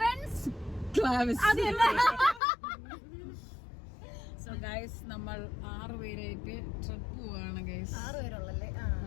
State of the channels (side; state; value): right; drops out; at 2.4 s